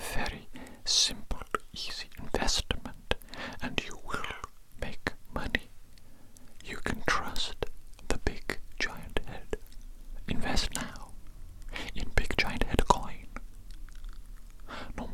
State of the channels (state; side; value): identical; both; correlation 1.00